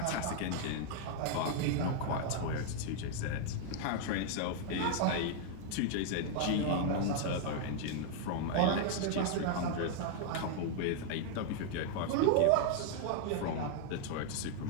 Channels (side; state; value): both; different; correlation 0.00